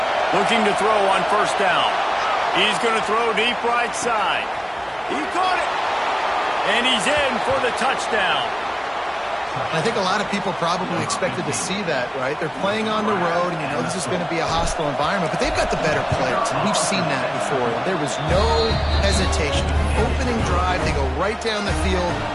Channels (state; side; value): identical; both; correlation 1.00